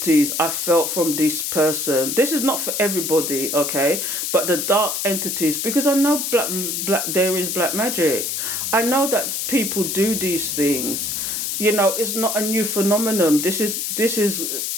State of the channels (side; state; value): left; noise; hiss, 2 dB below the sound